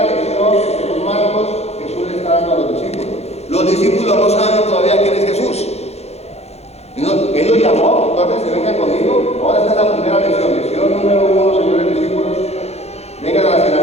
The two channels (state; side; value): late; right; 0.31 ms